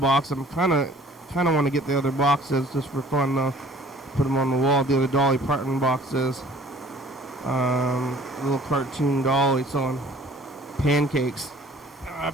I'm kind of want to get the other boxes just for fun though. Put them on the wall. The other Dolly Parton boxes. Little cartoon Dolly selling pancakes. I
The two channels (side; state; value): both; normal; correlation 0.52